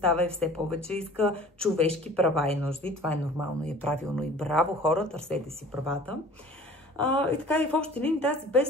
и все повече иска човешки права и нужди. Това е нормално и е правилно и браво хора, търсете си правата. И така и в общи линии тази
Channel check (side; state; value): both; normal; correlation 0.46